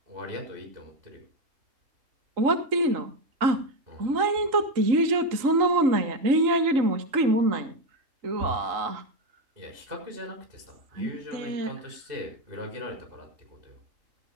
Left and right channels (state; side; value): late; left; 3.8 ms